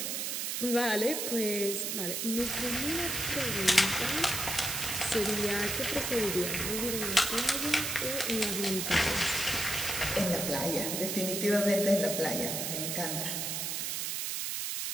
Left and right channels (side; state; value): right; noise; hiss, 1 dB below the sound